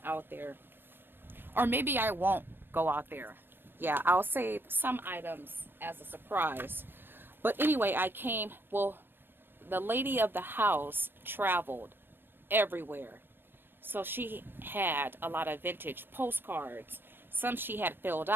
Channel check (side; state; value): left; late; 0.10 ms